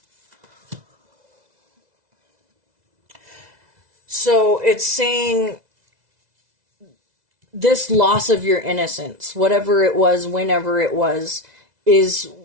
So it's saying this loss of your innocence, whatever it was, whenever it was, is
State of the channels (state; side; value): late; left; 2.0 ms